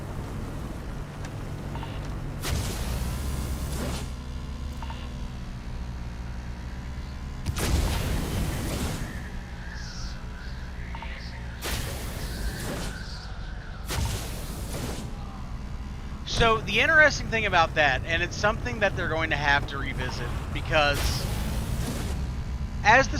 So the interesting thing about that, and it's something that they're going to have to revisit, because as the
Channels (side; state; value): both; identical; correlation 1.00